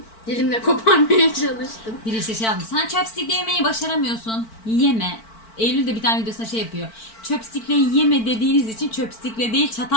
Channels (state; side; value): late; right; 4.5 ms